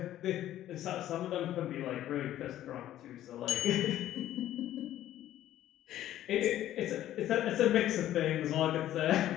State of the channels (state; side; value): quieter; right; 12.8 dB